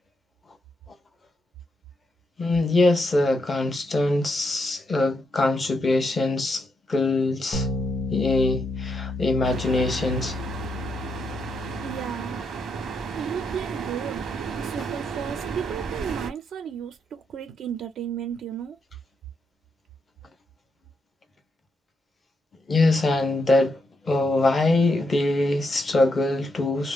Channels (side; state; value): both; normal; correlation 0.80